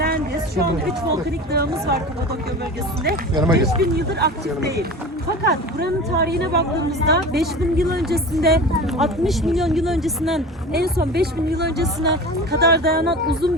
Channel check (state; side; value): normal; both; correlation 0.34